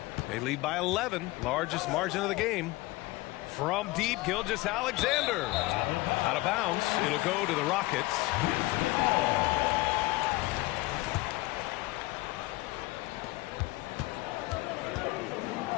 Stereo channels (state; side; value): quieter; right; 20.4 dB